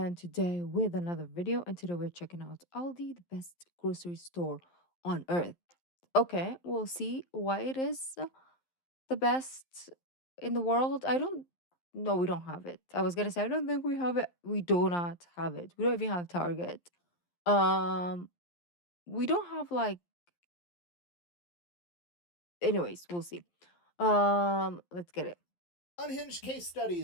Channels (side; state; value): right; late; 11 ms